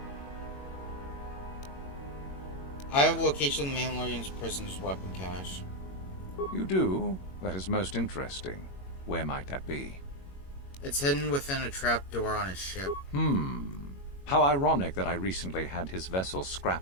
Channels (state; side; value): late; right; 21 ms